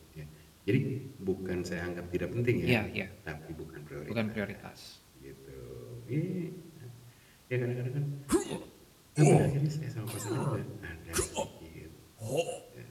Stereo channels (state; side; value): identical; both; correlation 1.00